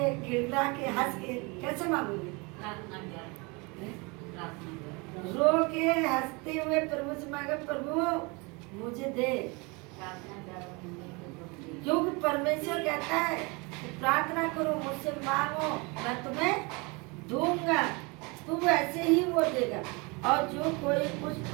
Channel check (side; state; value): left; quieter; 28.1 dB